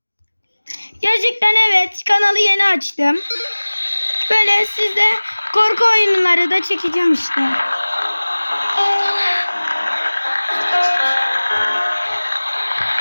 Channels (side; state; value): both; inverted; correlation -1.00